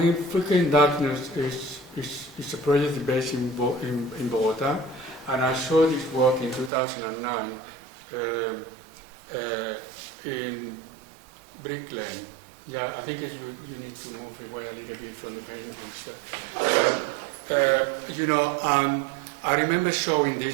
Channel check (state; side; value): drops out; left; at 6.7 s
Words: Freaking Darkness is a project based in Bogota, and I saw this work in 2009 in Brick Lane. Yeah, I think you need to move away a little bit from the paintings. And I remember showing